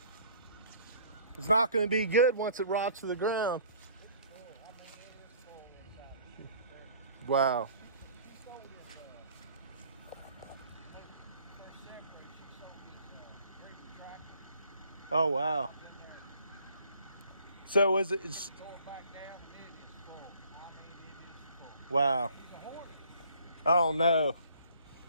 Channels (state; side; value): inverted; both; correlation -0.56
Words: It's not going to be good once it rots to the ground. Wow. Oh, wow. So is it? Wow. Oh, no.